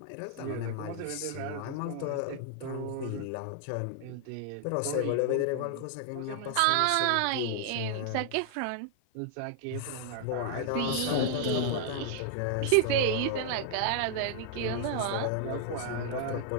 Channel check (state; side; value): different; both; correlation 0.00